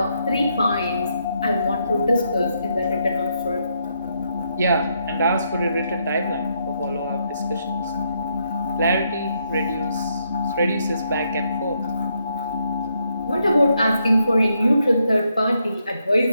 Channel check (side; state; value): both; inverted; correlation -0.77